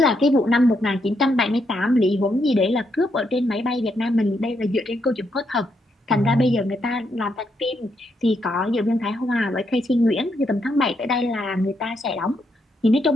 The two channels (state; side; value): normal; both; correlation 0.78